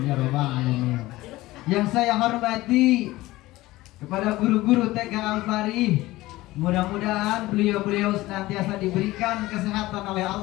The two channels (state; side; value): quieter; right; 18.2 dB